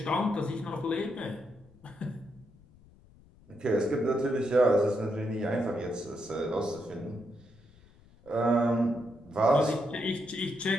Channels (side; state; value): left; noise; rumble, 26 dB below the sound